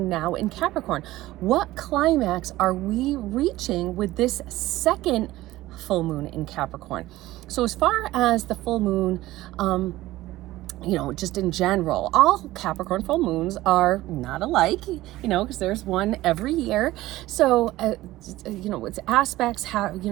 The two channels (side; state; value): left; quieter; 16.7 dB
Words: now in Capricorn. What climax are we reaching with this second full moon in Capricorn? So as far as the full moon, just in general, all Capricorn full moons are not alike, because there's one every year. So, its aspects